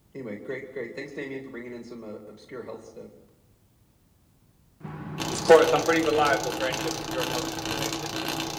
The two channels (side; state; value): both; identical; correlation 1.00